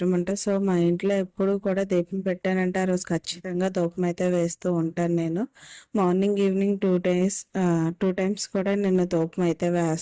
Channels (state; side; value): identical; both; correlation 1.00